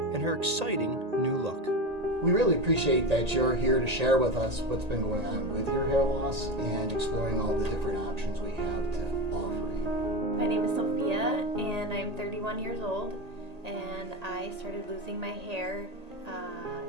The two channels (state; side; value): late; left; 1.8 ms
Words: and her exciting new look. We really appreciate that you're here to share with us what's been going on with your hair loss and exploring all the different options we have to offer you. My name is Sophia and I'm 31 years old, and I started losing my hair